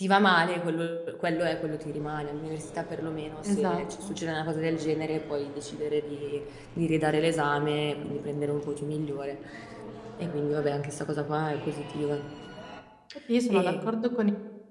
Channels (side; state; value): both; identical; correlation 1.00